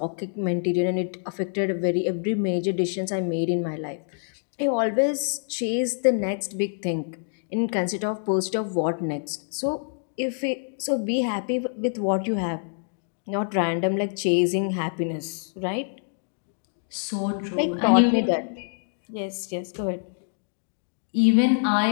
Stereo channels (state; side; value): silent; right; digital silence